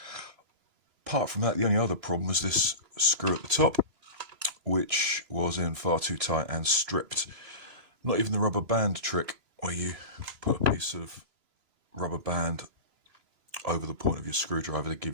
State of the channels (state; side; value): late; left; 3.0 ms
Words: from that, the only other problem was this screw at the top, which was in far too tight and stripped. Not even the rubber band trick, where you put a piece of rubber band over the point of your screwdriver to